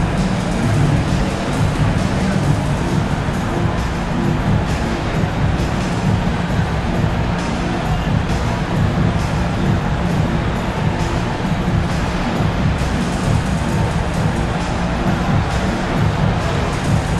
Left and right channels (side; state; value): both; identical; correlation 1.00